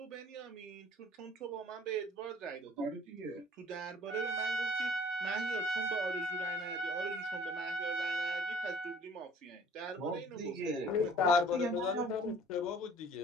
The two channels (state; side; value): normal; both; correlation 0.52